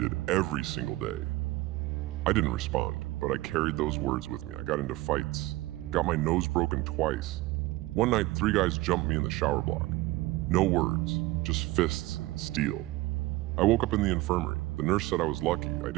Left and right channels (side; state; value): left; quieter; 18.7 dB